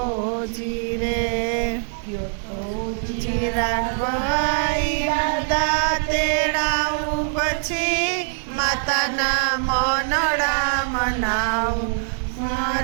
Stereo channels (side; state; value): left; silent; digital silence